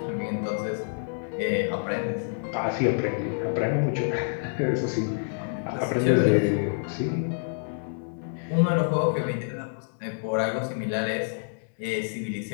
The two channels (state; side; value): silent; right; digital silence